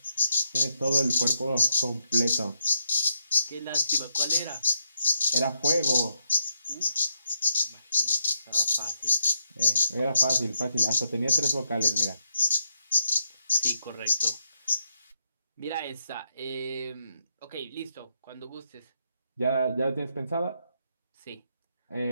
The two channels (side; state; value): both; inverted; correlation -0.80